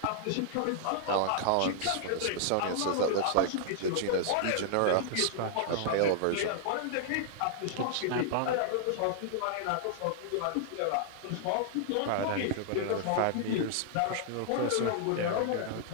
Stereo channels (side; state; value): both; different; correlation -0.01